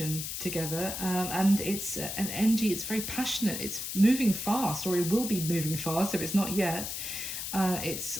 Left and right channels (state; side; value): noise; left; hiss, 5 dB below the sound